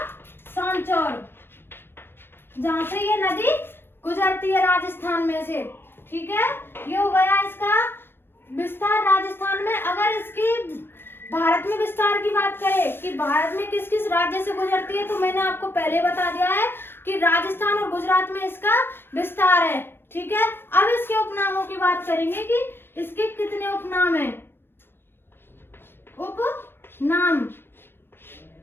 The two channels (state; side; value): late; right; 0.10 ms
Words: सांचौर, जहां से ये नदी गुजरती है राजस्थान में से, ठीक है। ये हो गया इसका विस्तार राजस्थान में। अगर इसकी भारत में विस्तार की बात करें कि भारत में किस किस राज्य से गुजरती है, तो मैंने आपको पहले बता दिया है कि राजस्थान और गुजरात में इसका विस्तार है, ठीक है। अब इसके उपनामों की बात करेंगे कि इसके कितने उपनाम हैं, उपनाम,